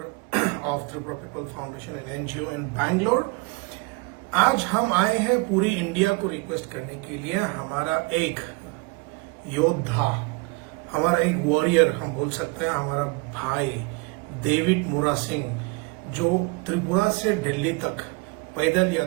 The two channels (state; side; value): quieter; left; 26.7 dB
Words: of Tripura people foundation and NGO in Bangalore. आज हम आए हैं पूरी इंडिया को रिक्वेस्ट करने के लिए। हमारा एक योद्धा, हमारा एक वॉरियर हम बोल सकते हैं, हमारा भाई डेविड मुरा सिंह, जो त्रिपुरा से दिल्ली तक पैदल